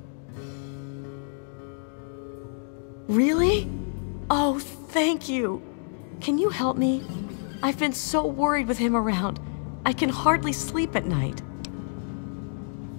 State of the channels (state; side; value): silent; right; digital silence